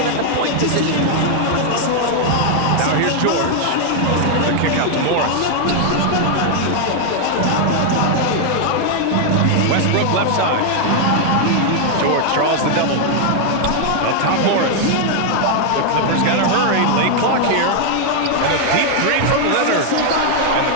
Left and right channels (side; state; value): both; different; correlation 0.00